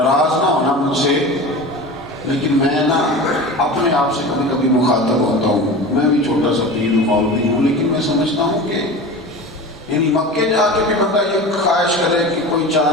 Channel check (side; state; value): both; normal; correlation 0.32